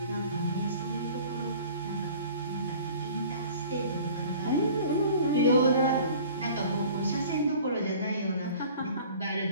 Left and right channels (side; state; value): both; inverted; correlation -0.46